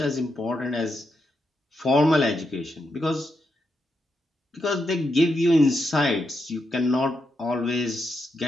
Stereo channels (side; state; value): both; normal; correlation 0.83